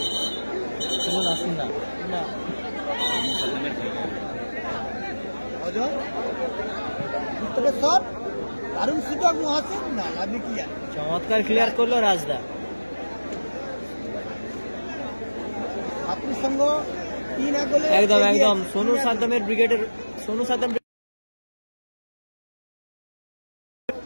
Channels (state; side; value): inverted; both; correlation -1.00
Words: নাসির না চমৎকার ক্লিয়ার করলো রাজদা। একদম একদম সোনু সাদ্দামের ব্রিগেডের সোনু সাদ্দাম